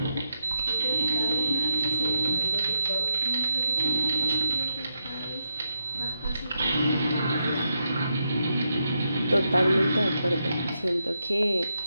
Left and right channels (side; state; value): both; inverted; correlation -0.83